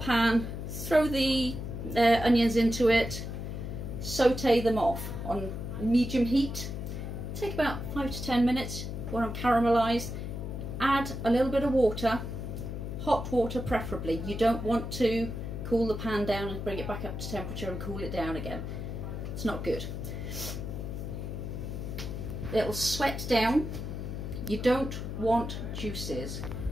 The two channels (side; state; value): left; noise; hum, 5 dB below the sound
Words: pan, throw the onions into it, saute them off on medium heat. Take about 5 to 10 minutes when I'm caramelised. Add a little bit of water, hot water preferably. You don't want to cool the pan down and bring it back up to temperature and cool it down again. It's not good. It'll sweat down. You don't want juices.